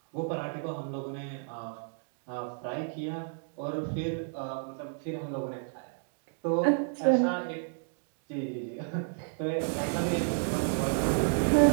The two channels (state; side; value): silent; left; digital silence